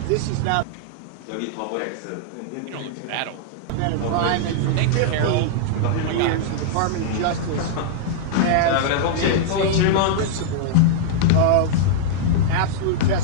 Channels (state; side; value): different; both; correlation -0.01